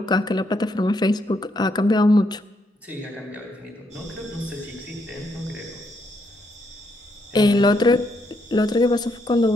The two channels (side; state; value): both; normal; correlation 0.76